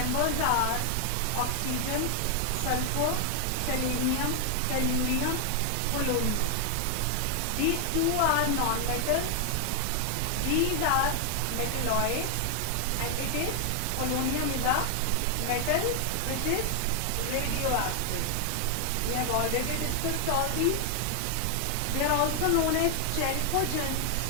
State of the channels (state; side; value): different; both; correlation 0.00